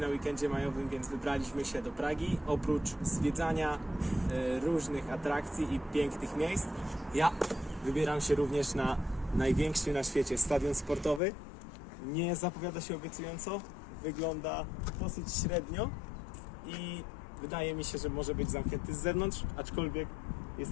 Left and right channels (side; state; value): right; drops out; at 11.2 s